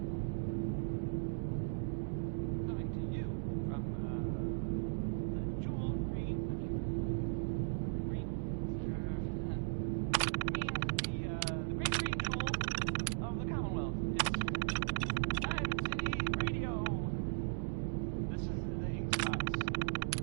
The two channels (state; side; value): silent; left; digital silence